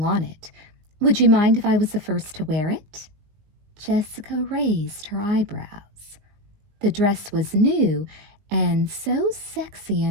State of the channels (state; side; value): late; left; 20 ms